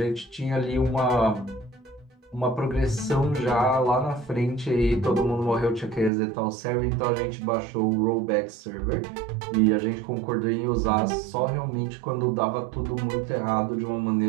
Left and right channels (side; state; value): left; drops out; at 6.1 s